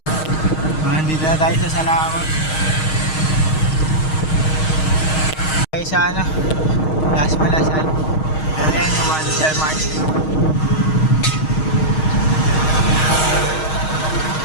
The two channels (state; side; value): late; right; 6.4 ms